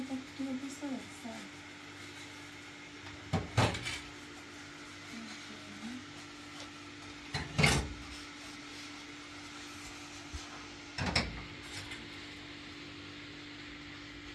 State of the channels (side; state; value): both; identical; correlation 1.00